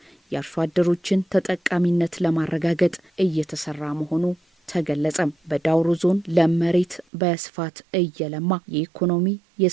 የአርሶ አደሮችን ተጠቃሚነት ለማረጋገጥ እየተሰራ መሆኑ ተገለጸ። በዳውሮ ዞን ለመሬት በስፋት እየለማ የኢኮኖሚ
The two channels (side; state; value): left; drops out; at 7.1 s